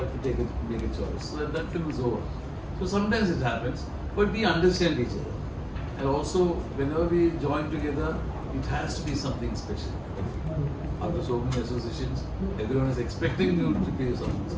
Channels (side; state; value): both; identical; correlation 1.00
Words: to make a choice. So that film is over. So sometimes it happens, but we understand each other. And also, whenever we join together, it has to be something special. After so many associations, everyone is expecting you to be something